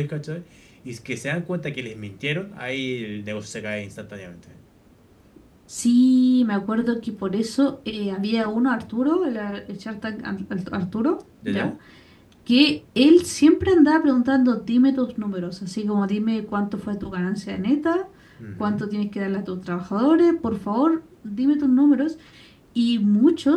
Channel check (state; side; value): identical; both; correlation 1.00